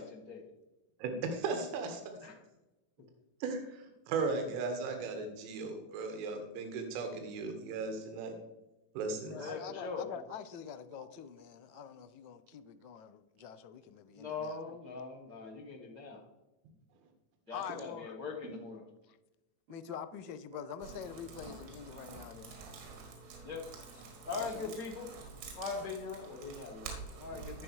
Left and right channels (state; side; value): late; left; 19 ms